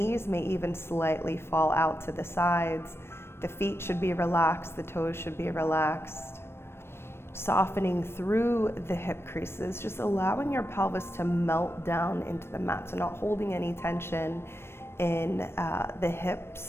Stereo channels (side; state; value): right; late; 0.12 ms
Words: may even slightly fall out to the sides. The feet should be relaxed, the toes should be relaxed. Softening through the hip creases, just allowing your pelvis to melt down into the mat, so not holding any tension in the